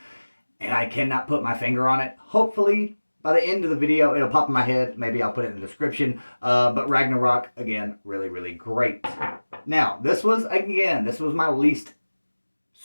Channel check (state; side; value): inverted; both; correlation -1.00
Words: and I cannot put my finger on it. Hopefully, by the end of the video, it'll pop in my head. Maybe I'll put it in the description. But Ragnarok, again, really, really great. Now, this was my least